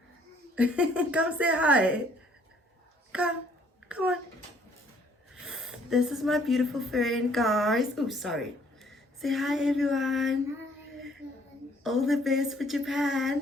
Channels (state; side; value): normal; both; correlation 0.62